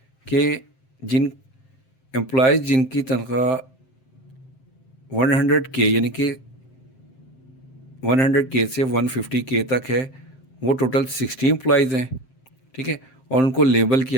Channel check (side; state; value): right; late; 7.7 ms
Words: के जिन एम्प्लॉयज़ जिनकी तनख्वाह 100K यानी कि 100K से 150K तक है, वो टोटल 60 एम्प्लॉयज़ हैं। ठीक है, और उनको लेबल